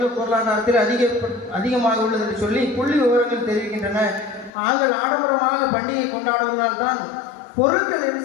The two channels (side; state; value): right; drops out; at 4.5 s